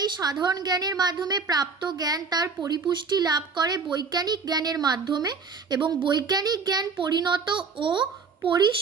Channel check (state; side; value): quieter; left; 4.9 dB